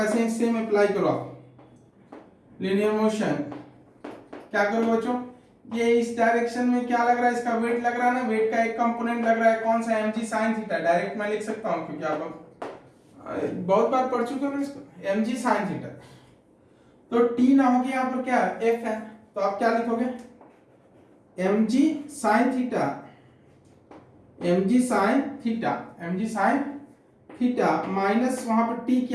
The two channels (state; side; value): identical; both; correlation 1.00